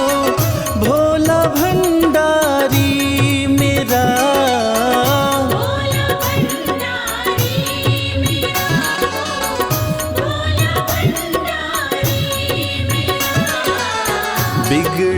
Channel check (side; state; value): both; identical; correlation 1.00